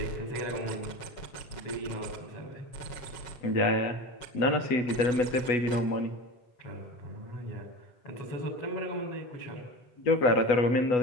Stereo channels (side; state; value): right; late; 8.1 ms